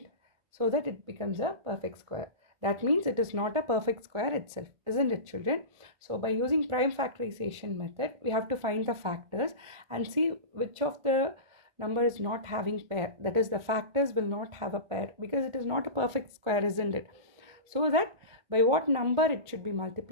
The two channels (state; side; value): late; left; 1.4 ms